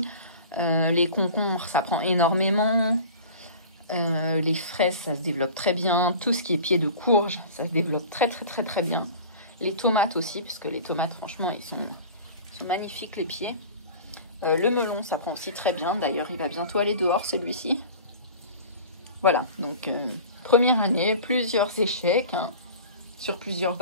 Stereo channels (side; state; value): both; inverted; correlation -0.39